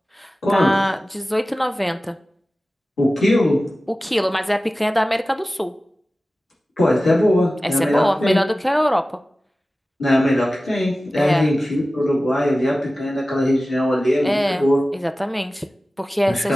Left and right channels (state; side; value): normal; both; correlation 0.96